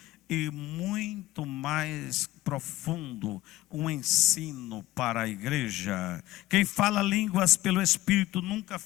e muito mais profundo, um ensino para a igreja. Quem fala línguas pelo Espírito nunca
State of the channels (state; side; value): quieter; right; 16.7 dB